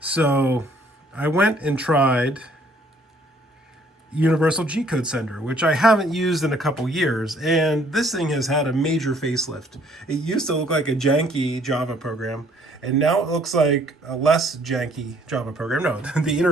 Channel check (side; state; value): both; normal; correlation 0.62